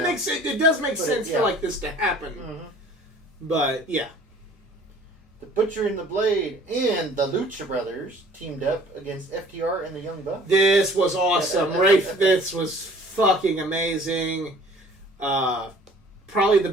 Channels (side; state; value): both; normal; correlation 0.51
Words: makes it does make sense for like this to happen. Mm-hmm. But yeah. The Butcher and the Blade and the Lucha Brothers teamed up against FTR and the Young Bucks. This was awesome. This was fucking amazing. Probably the